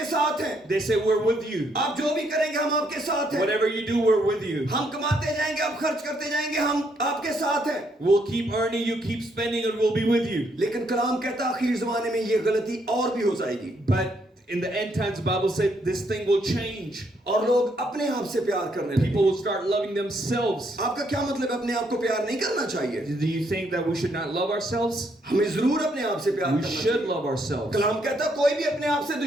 साथ हैं, They say, we're with you. आप जो भी करेंगे हम आपके साथ हैं, Whatever you do, we're with you. हम कमाते जाएंगे, आप खर्च करते जाएंगे, हम आपके साथ हैं। We'll keep earning, you keep spending, and we'll be with you. लेकिन कलाम कहता है आखिर जमाने में ये गलती और भी हो जाएगी But in the end times, the Bible said this thing will change. और लोग अपने आप से प्यार करने लगेंगे। People will start loving themselves. आपका क्या मतलब है अपने आप को प्यार नहीं करना चाहिए? Do you think that we should not love ourselves? हमें जरूर अपने आप से प्यार We करना should चाहिए। love ourselves. कलाम कहता है कोई भी अपने आप से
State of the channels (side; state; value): both; normal; correlation 0.73